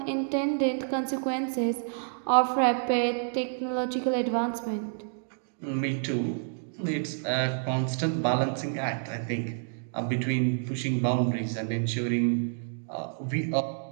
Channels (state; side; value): silent; left; digital silence